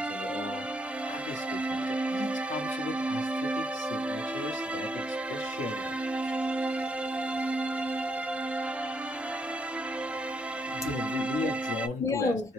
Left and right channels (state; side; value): normal; both; correlation 0.75